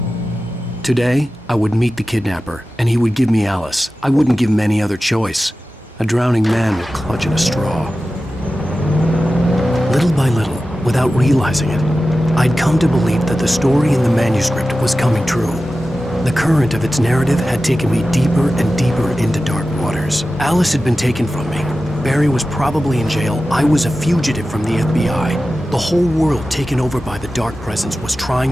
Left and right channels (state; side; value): normal; both; correlation 0.94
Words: Today, I would meet the kidnapper, and he would give me Alice. I wouldn't give him any other choice. A drowning man would clutch at a straw. Little by little, without realizing it, I'd come to believe that the story in the manuscript was coming true. The current of its narrative had taken me deeper and deeper into dark waters. Alice had been taken from me. Barry was probably in jail. I was a fugitive from the FBI. The whole world taken over by the dark presence was trying